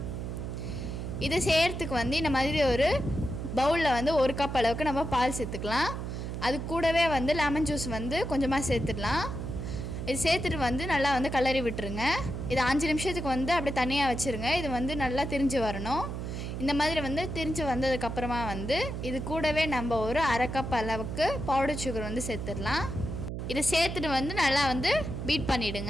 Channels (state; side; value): noise; right; hum, 5 dB below the sound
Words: இதை செய்யறதுக்கு வந்து இந்த மாதிரி ஒரு பவுல்ல வந்து 1 கப் அளவுக்கு நம்ம பால் சேர்த்துக்கலாம். அது கூடவே வந்து லெமன் ஜூஸ் வந்து கொஞ்சமா சேர்த்துடலாம். இது சேர்த்துட்டு வந்து நல்லா வந்து கலரி விட்டுருங்க. இது 5 நிமிஷத்துக்கு வந்து அப்படியே தனியாக வச்சுருங்க. இது வந்து நல்லா திரிஞ்சு வரணும். இந்த மாதிரி வந்து திரிஞ்சு வந்ததுக்கப்புறமா வந்து இது கூடவே நம்ம ஒரு 1/2 கப் அளவுக்கு பவுடர் சுகர் வந்து சேர்த்துடலாம். இதை சேர்த்துட்டு வந்து நல்லா வந்து பீட்